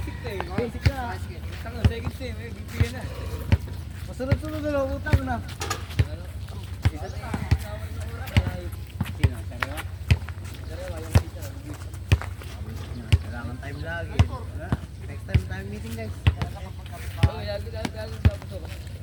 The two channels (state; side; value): identical; both; correlation 1.00